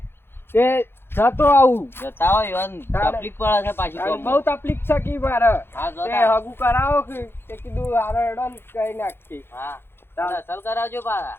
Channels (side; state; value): right; late; 0.11 ms